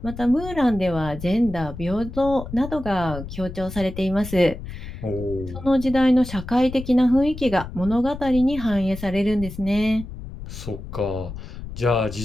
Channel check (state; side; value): noise; left; rumble, 11 dB below the sound